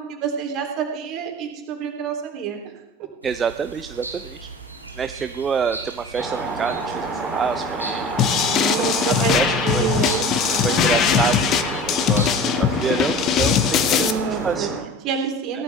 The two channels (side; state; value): both; normal; correlation 0.38